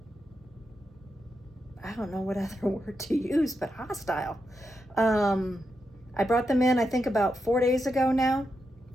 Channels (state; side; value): normal; both; correlation 0.85